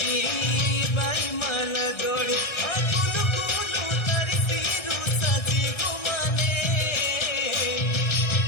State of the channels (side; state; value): right; late; 1.6 ms